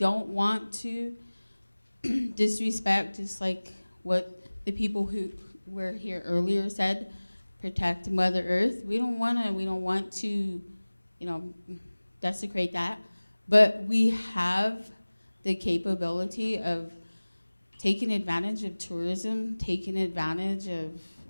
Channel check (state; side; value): inverted; both; correlation -1.00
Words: want to disrespect, just like what the people who were here earlier said, protect Mother Earth. We don't want to, you know, desecrate that. But we have the capability of taking advantage of tourism, taking advantage of,